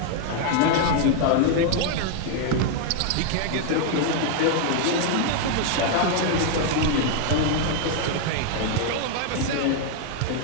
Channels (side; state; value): both; different; correlation 0.00